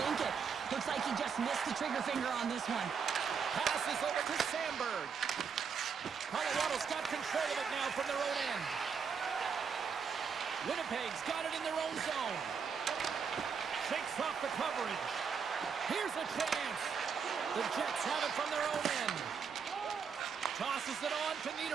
it. Looks like he just missed the trigger finger on this one. Passes over to Sandberg. Colorado's got control of it now from their own end. Winnipeg's got it in their own zone. Shakes off the coverage. Here's a chance. The Jets have it from their own end. Tosses it on to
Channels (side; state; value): left; quieter; 6.3 dB